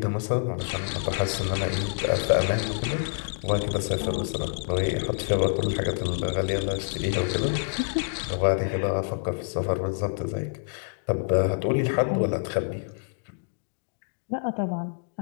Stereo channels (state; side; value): silent; right; digital silence